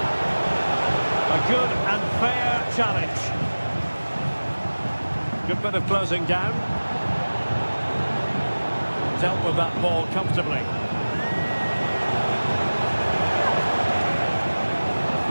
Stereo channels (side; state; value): both; inverted; correlation -1.00